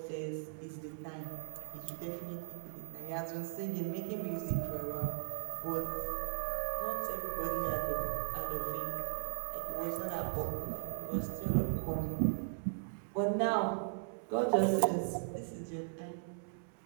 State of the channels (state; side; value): silent; left; digital silence